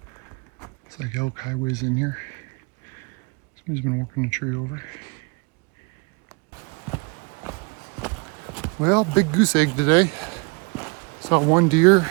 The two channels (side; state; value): left; quieter; 31.8 dB